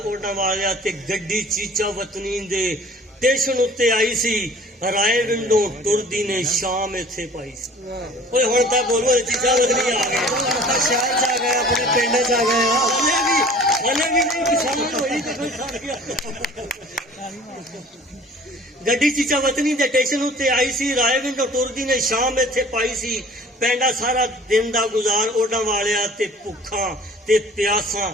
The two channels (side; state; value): both; normal; correlation 0.48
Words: ਓਡਾਂ ਵਾਲਿਆ ਤੇ ਗੱਡੀ ਚੀਚਾ ਵਤਨੀ ਦੇ ਸਟੇਸ਼ਨ ਉੱਤੇ ਆਈ ਸੀ। ਰਾਏ ਵਿੰਡੋ ਟੁਰਦੀ ਨੇ ਸ਼ਾਮ ਇੱਥੇ ਪਾਈ ਸੀ। ਓਏ ਹੁਣ ਤਾਂ ਬੋਲੋ ਚੀਚਾ ਵਤਨੀ ਆ ਗਏ, ਸ਼ਹਿਰ ਚ ਆ ਗਏ, ਆਪਣੇ ਪਿੰਡ ਚ ਆ ਗਏ। ਹਲੇ ਵੀ ਨਹੀਂ ਕਿਸਾਨ ਹੋਈ ਤੇ ਕੋਈ ਸੜ ਗਿਆ। ਗੱਡੀ ਚੀਚਾ ਵਤਨੀ ਦੇ ਸਟੇਸ਼ਨ ਉੱਤੇ ਆਈ ਸੀ। ਰਾਏ ਵਿੰਡੋ ਟੁਰਦੀ ਨੇ ਸ਼ਾਮ ਇੱਥੇ ਪਾਈ ਸੀ। ਪੈਂਡਾ ਸਾਰਾ ਦਿਨ ਦਾ ਗੁਜ਼ਾਰ ਓਡਾਂ ਵਾਲਿਆ ਤੇ ਭੁੱਖਾਂ ਤੇ ਪਿਆਸਾਂ